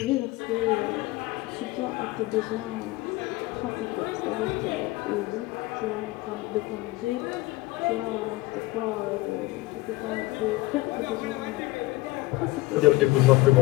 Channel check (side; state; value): right; quieter; 20.0 dB